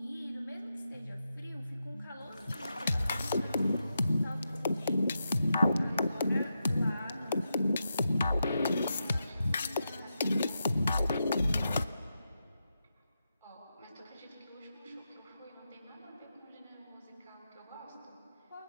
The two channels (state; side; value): inverted; both; correlation -0.87